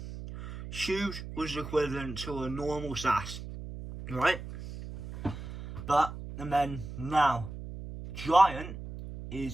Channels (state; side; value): noise; right; hum, 10 dB below the sound